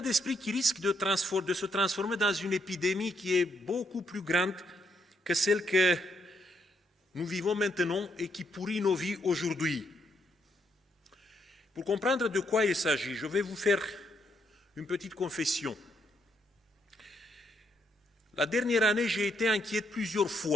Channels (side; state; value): both; normal; correlation 0.75